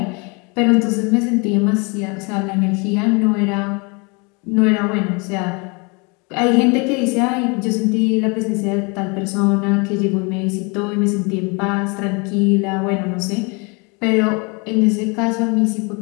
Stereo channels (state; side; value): quieter; right; 30.6 dB